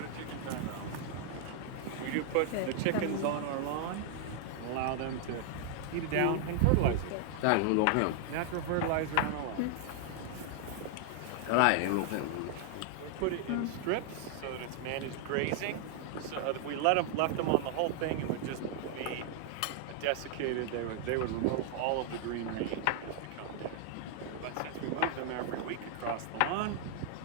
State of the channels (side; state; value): both; different; correlation 0.00